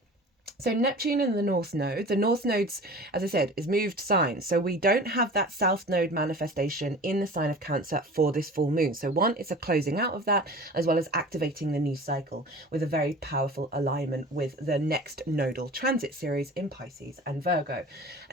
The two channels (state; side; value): normal; both; correlation 0.39